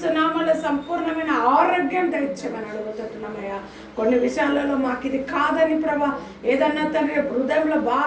నామములో సంపూర్ణమైన ఆరోగ్యం దయచేయమని అడుగుతున్నామయ్యా. కొన్ని విషయాలలో మాకు ఇది కాదని ప్రభా, ఏదన్నా తండ్రి హృదయంలో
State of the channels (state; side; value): identical; both; correlation 1.00